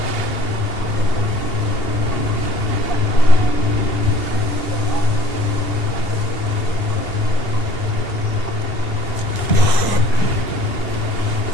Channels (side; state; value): right; late; 2.8 ms